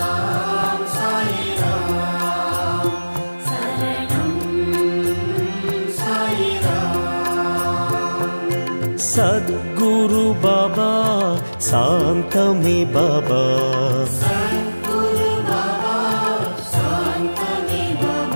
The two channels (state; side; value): inverted; both; correlation -1.00